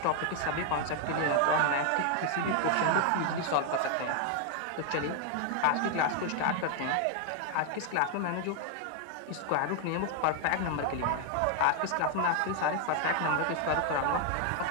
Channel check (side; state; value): both; different; correlation 0.00